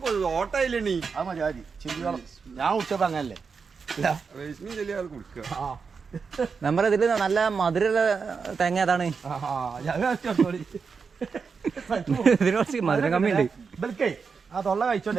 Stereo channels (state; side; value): quieter; left; 5.4 dB